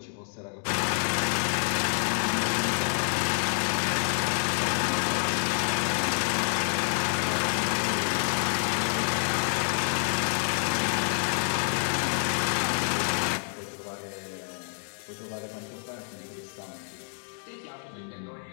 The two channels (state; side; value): silent; right; 59 dB below the other